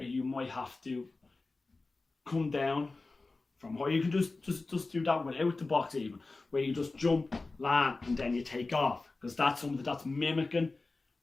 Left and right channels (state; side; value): quieter; right; 3.5 dB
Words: you might have to come down from high. You can just do that without the box even, where you just jump, land, and then you take off. Because that's something that's mimicking